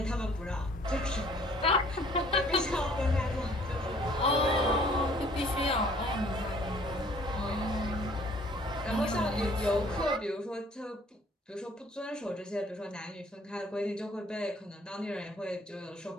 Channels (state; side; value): normal; both; correlation 0.57